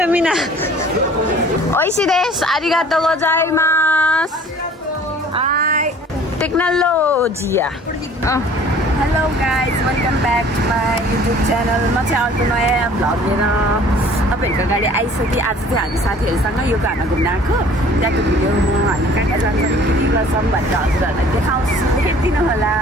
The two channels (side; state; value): both; normal; correlation 0.51